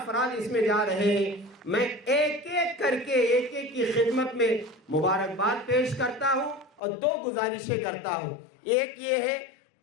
اس میں جا رہے ہیں میں ایک ایک کر کے ایک ایک کی خدمت میں مبارکباد پیش کرتا ہوں اور دو گزارشیں کرتا ہوں. ایک یہ ہے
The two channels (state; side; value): drops out; right; at 6.8 s